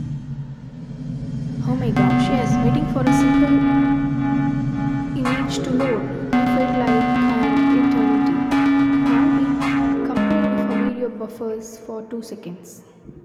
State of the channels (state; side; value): identical; both; correlation 1.00